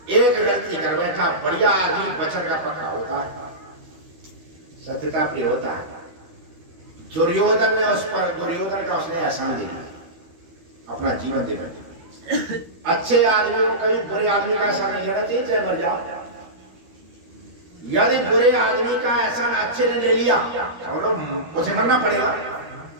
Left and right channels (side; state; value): left; late; 12 ms